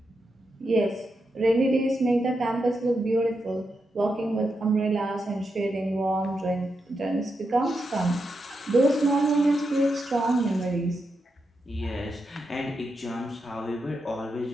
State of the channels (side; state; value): both; normal; correlation 0.85